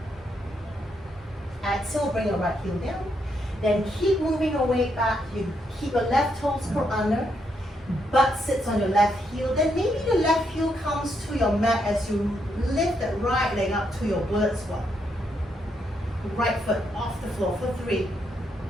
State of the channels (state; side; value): normal; both; correlation 0.78